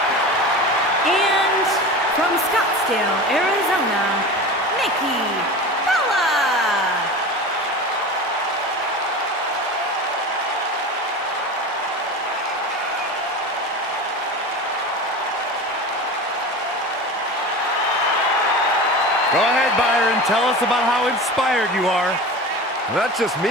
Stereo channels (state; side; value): normal; both; correlation 0.31